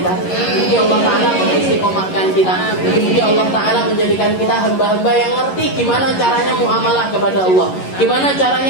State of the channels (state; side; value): late; right; 11 ms